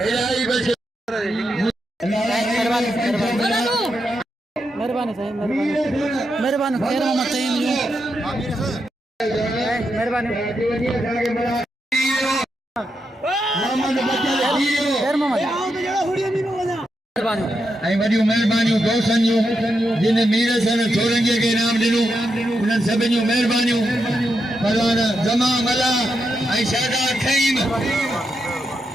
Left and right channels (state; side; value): normal; both; correlation 0.84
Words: इलाही बच महिरबानी साईं महिरबानी खैर मोहम्मद साईं महिरबानी खैर मोहम्मद ऐं वॾियूं महिरबानियूं दोस्तनि जूं जिन मीर सन छोरंगीअ खे इनाम ॾिनो उन्हनि सभिनी जूं महिरबानियूं बलवान जमा मला ऐं शहदार खईम